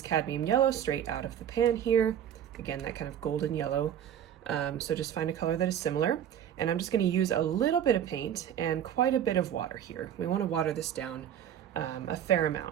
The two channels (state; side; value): quieter; left; 9.8 dB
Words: cadmium yellow straight out of the pan here. Again, that kind of golden yellow. So just find a color that is similar. And I'm just going to use a little bit of paint and quite a bit of water here. We want to water this down a fair